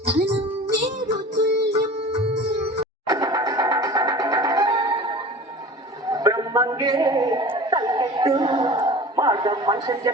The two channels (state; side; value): normal; both; correlation 0.38